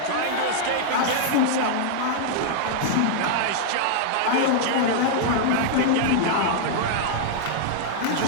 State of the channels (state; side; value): different; both; correlation -0.01